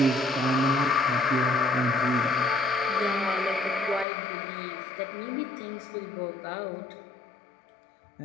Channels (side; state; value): right; drops out; at 4.0 s